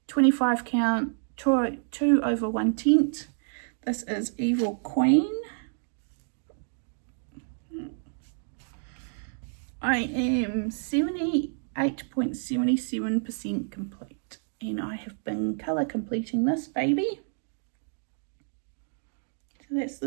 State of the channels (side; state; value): left; silent; digital silence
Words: 25 count, 2 over 1/10. This is Evil Queen. I am 78.77% complete, and I have been colour completing this baby. So that's